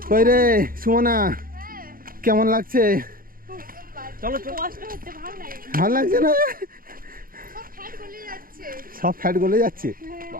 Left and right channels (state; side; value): late; left; 0.42 ms